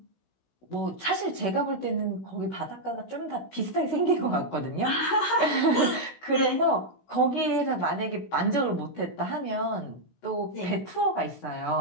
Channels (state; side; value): late; right; 16 ms